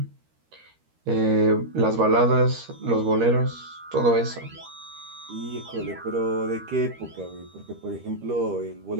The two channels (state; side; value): late; left; 13 ms